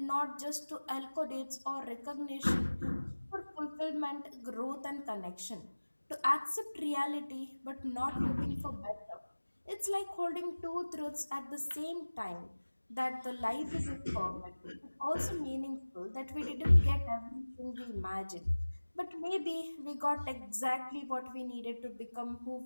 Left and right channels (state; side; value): inverted; both; correlation -1.00